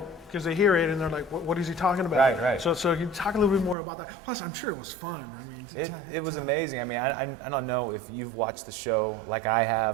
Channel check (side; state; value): left; drops out; at 3.8 s